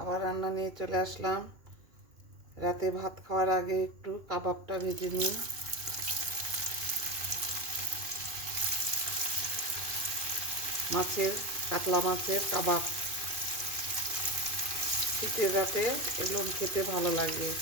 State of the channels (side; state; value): left; late; 2.5 ms